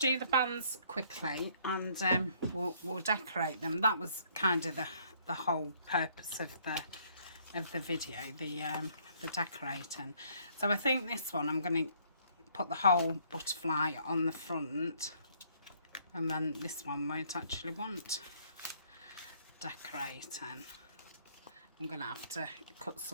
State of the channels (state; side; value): inverted; both; correlation -0.64